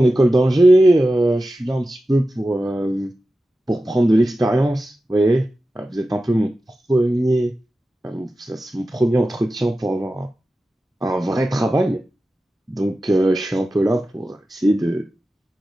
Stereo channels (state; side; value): normal; both; correlation 0.93